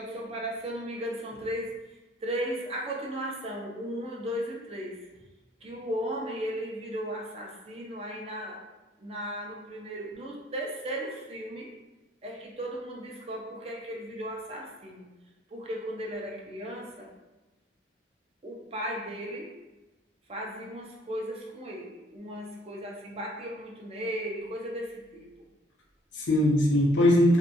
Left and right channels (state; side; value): normal; both; correlation 0.61